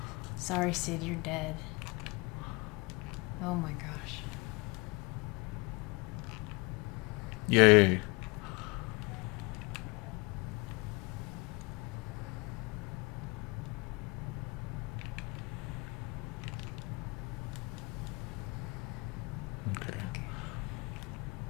Sorry, Sid, you're dead. Oh my gosh. Yay. Okay.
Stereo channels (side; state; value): right; quieter; 26.8 dB